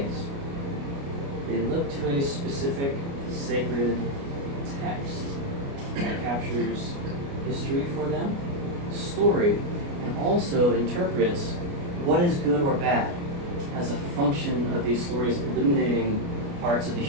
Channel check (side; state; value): left; late; 29 ms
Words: they look to a specific sacred text that captures history for them, story, and also interprets what is good or bad as a function of these stories illuminating parts of the